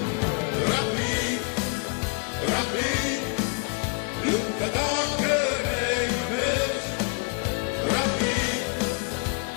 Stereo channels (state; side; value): quieter; right; 34.3 dB